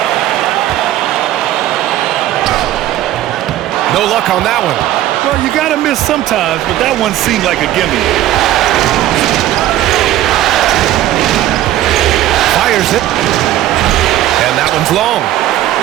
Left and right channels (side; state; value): left; quieter; 13.6 dB